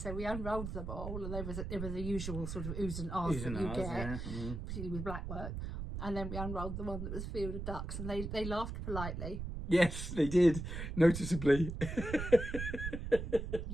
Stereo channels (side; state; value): right; noise; rumble, 5 dB below the sound